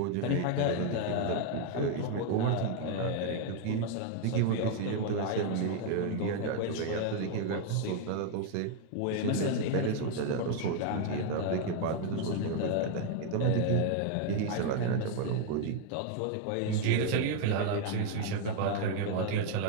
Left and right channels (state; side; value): different; both; correlation 0.01